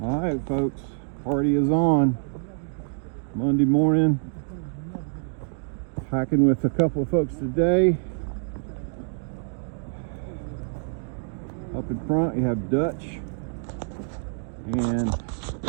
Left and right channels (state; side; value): silent; left; 61 dB below the other